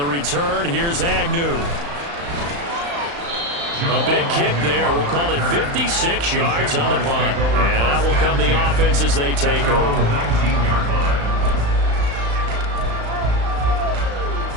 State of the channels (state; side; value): late; left; 35 ms